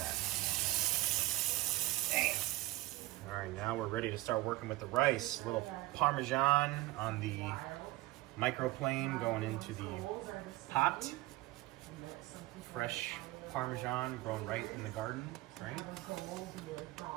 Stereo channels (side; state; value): left; quieter; 18.9 dB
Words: Damn. All right, now we're ready to start working with the rice. A little Parmesan on the microplane going into the pot. Fresh Parmesan grown right in the garden, right?